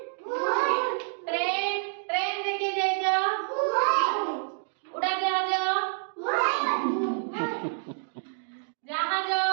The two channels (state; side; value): silent; left; digital silence